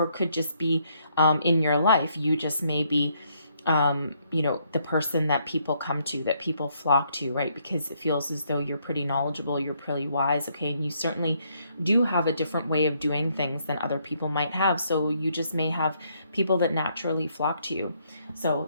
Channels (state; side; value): inverted; both; correlation -0.72